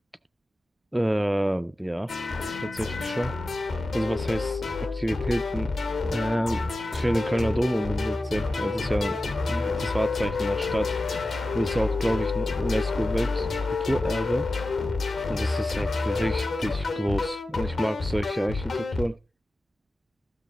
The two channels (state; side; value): normal; both; correlation 0.94